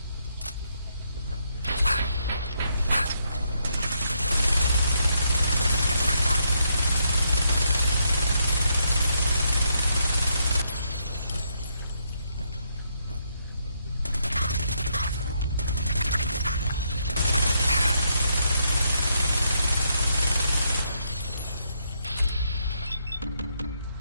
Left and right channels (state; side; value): inverted; both; correlation -0.76